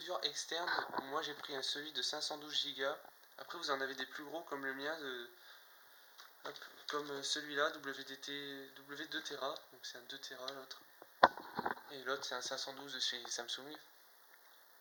externe. Moi j'ai pris celui de 512 Go. Après vous en avez des plus gros comme le mien de... Hop, comme celui-là, WDT W2Tera, donc c'est un 2Tera l'autre. Et l'autre c'est un 512 de chez Samsung.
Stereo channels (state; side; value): identical; both; correlation 1.00